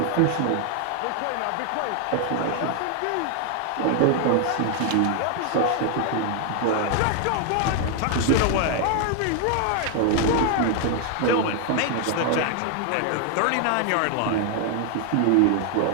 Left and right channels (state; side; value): different; both; correlation 0.00